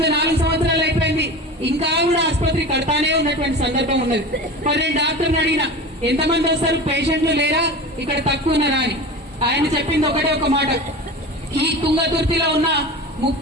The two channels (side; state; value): both; normal; correlation 0.32